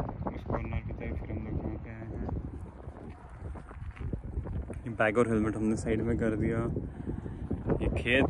उस कॉर्नर की तरफ, फिर हम लोग यहाँ पे आए हैं। ये बैग और हेलमेट हमने साइड में कर दिया। ये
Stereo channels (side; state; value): both; identical; correlation 1.00